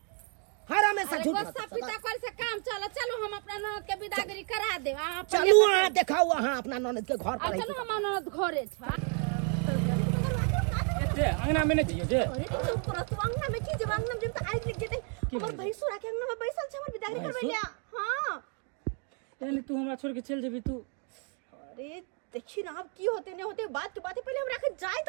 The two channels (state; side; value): quieter; left; 39.5 dB